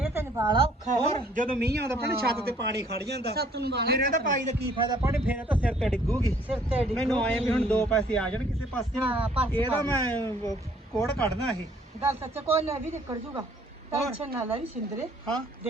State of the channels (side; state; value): both; normal; correlation 0.60